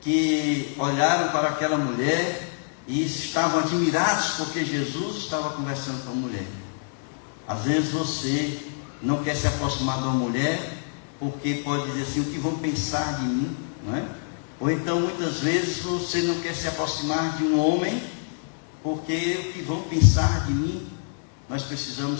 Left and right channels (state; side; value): silent; right; digital silence